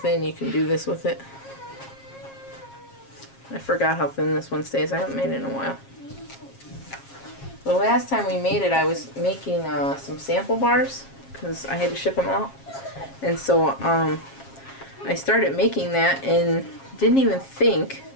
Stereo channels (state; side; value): late; right; 7.4 ms